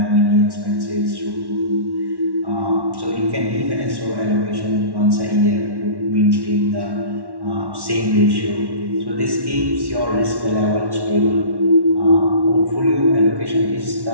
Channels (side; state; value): left; late; 1.1 ms